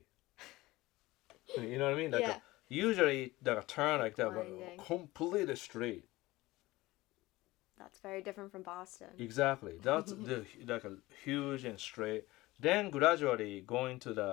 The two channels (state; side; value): quieter; right; 19.3 dB